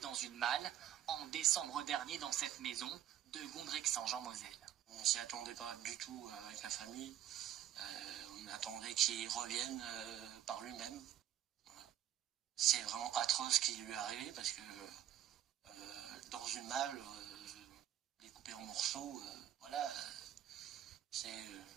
dans une malle en décembre dernier dans cette maison de Gondrexange en Moselle. On s'y attendait pas du tout avec la famille. On attendait qu'il revienne par lui-même. Voilà. C'est vraiment atroce ce qui lui est arrivé parce que dans une malle, découpée en morceaux, voilà, c'est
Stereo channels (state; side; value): quieter; left; 11.7 dB